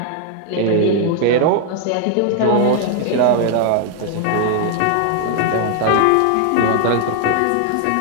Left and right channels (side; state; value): both; different; correlation 0.00